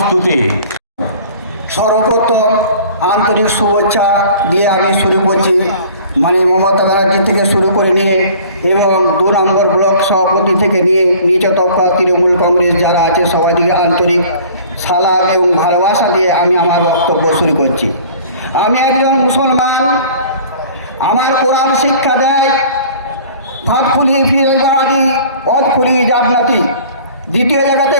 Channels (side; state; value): both; inverted; correlation -0.47